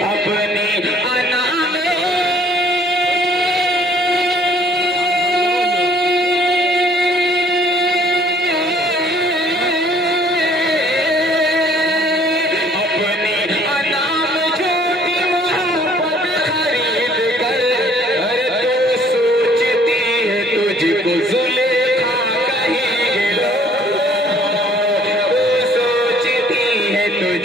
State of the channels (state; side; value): normal; both; correlation 0.59